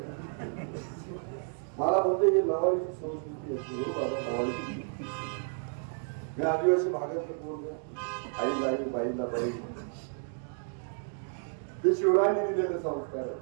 मला बोलते ही लवाळीची संस्कृती असते. हो बाबा लवाळीची मी आदिवासी भागातलं बोललो. आईला आई बाईला बाई ते शिवरायांनी दिलेले संस्कार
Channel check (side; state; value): left; silent; 57 dB below the other